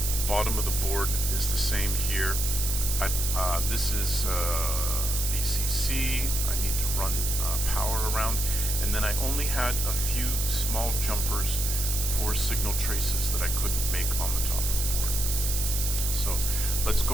The bottom of the board is the same here. This is VCC. I need to run power around. And then I only had a few small jumpers for signal traces that I couldn't make on the top of the board. So let's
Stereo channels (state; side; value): noise; right; hiss, 1 dB below the sound